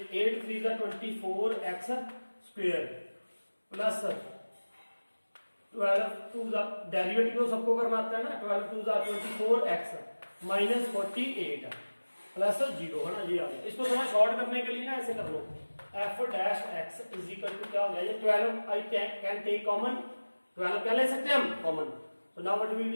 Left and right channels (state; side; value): inverted; both; correlation -1.00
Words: 8 3 जा 24x स्क्वायर प्लस 12 2 जा डेरिवेटिव तो सबको करना आता है ना, 12 2 जा 24x माइनस 48 प्लस 0, है ना, ये आ गया। इसको थोड़ा शॉर्ट करने के लिए ना ऐसे कर लो f dash x is equal to क्या हो गया ये 12 आई कैन टेक कॉमन, 12 क्या ले सकते हैं हम कॉमन, तो now what will